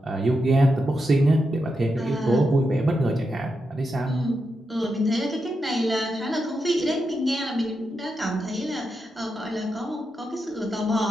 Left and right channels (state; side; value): normal; both; correlation 0.86